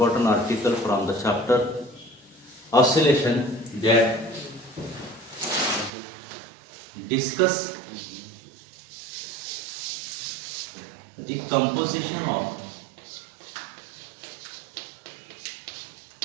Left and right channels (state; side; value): drops out; left; at 5.9 s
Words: article from the chapter oscillation that discuss the composition of